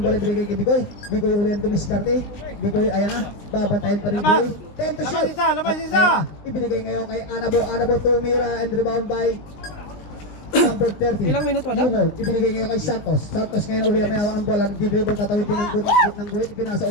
bola ibigay kay Bicoy. Bicoy uli ang dumiskarte. Bicoy ayan na, babantayin pa rin Bicoy. 10 to shoot. Labas isa! Ibinigay ngayon kay Anabo. Anabo tumira and rebound by number 30. Ilang minuto na? Yumo, ibinigay ngayon kay Santos. Santos ngayon uli ang may hawak ng bola. Nag-dribble, tatawid din ng guhit. Ipinasa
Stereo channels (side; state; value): right; late; 19 ms